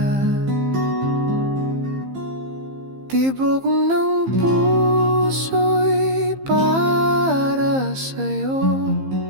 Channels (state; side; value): late; left; 15 ms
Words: Tibok ng puso'y para sa'yo.